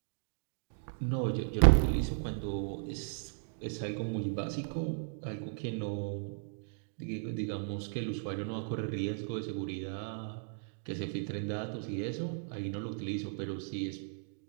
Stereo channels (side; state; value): left; silent; digital silence